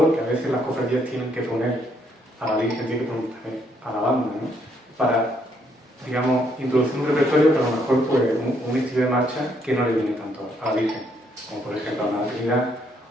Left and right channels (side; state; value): both; normal; correlation 0.72